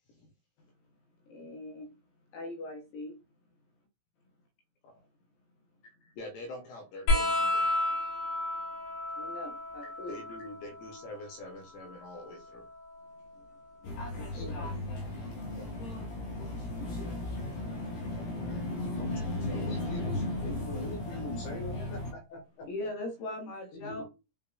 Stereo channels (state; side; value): late; right; 17 ms